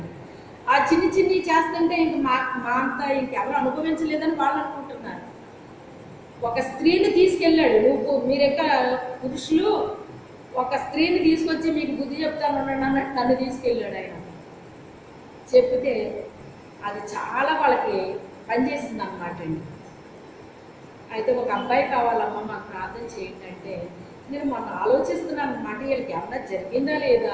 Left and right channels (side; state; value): both; identical; correlation 1.00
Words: ఆ చిన్ని చేస్తుంటే ఇంక మా అంతా ఇంకెవరు అనుభవించలేదని వాళ్ళు అనుకుంటున్నారు. ఒక స్త్రీని తీసుకెళ్ళాడు, మీరెక్క పురుషులు ఒక స్త్రీని తీసుకొచ్చి మీకు బుద్ధి చెప్తాను అన్నట్టు నన్ను తీసుకెళ్ళాడు ఆయన. చెప్తే అది చాలా వాళ్ళకి పనిచేసింది అన్నమాట అండి. అయితే ఒక అబ్బాయి కావాలమ్మా మాకు ప్రార్థన చేయండి అంటే, నేను మొన్న ఆలోచిస్తున్నాను అన్నమాట, వీళ్ళకి ఏమన్నా జరిగిందా